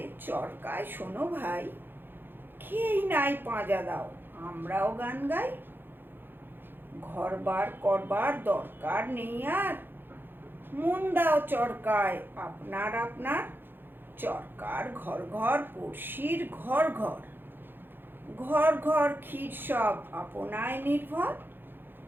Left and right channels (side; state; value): left; late; 0.099 ms